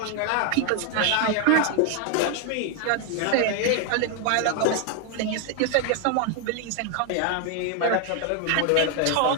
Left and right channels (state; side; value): different; both; correlation 0.00